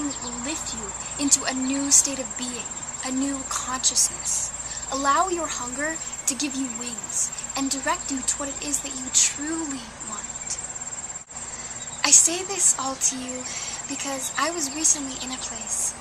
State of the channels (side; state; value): both; identical; correlation 1.00